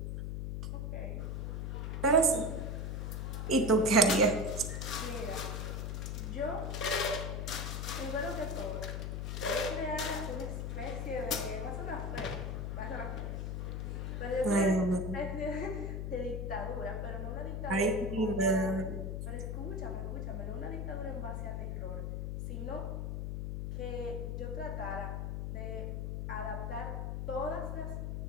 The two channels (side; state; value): left; noise; hum, 2 dB below the sound